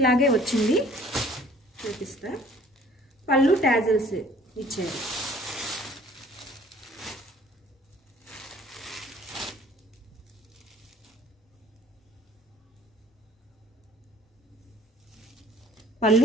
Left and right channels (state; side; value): normal; both; correlation 0.54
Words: వచ్చింది, చూపిస్తా. పళ్ళు టాజల్స్ ఇచ్చారు.